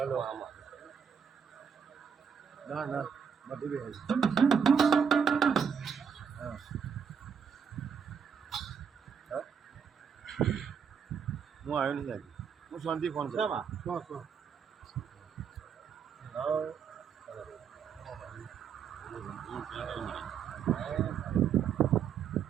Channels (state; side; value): quieter; left; 7.0 dB